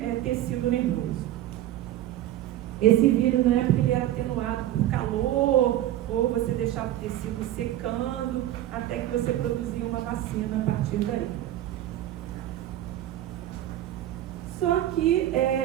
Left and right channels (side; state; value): left; quieter; 13.3 dB